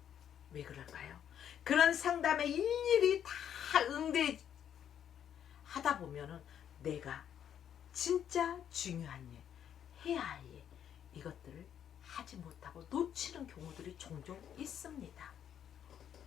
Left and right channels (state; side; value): quieter; right; 9.4 dB